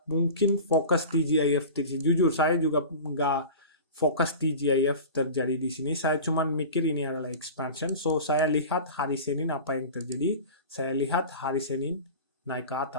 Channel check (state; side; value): inverted; both; correlation -0.34